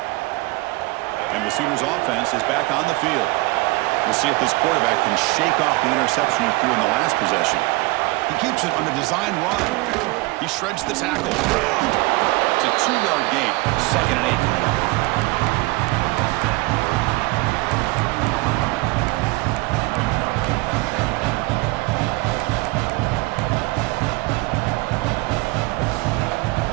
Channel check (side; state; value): left; quieter; 22.9 dB